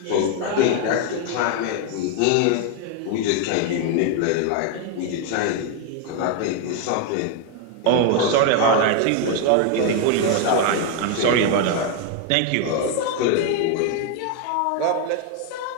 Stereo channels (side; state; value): both; different; correlation 0.01